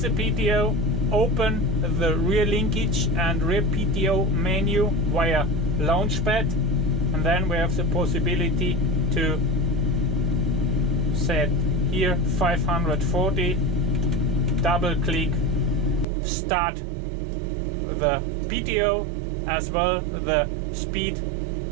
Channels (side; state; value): left; drops out; at 16.1 s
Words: PTO, open the rear linkage and rear PTO menu via launchpad, and then we have the possibility to set here 540, double click, start the PTO as well the speed